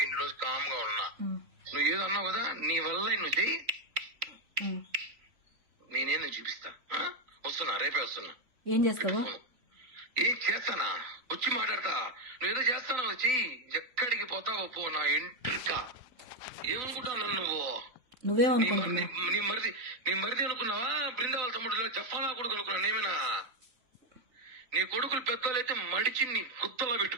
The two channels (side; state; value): left; late; 3.9 ms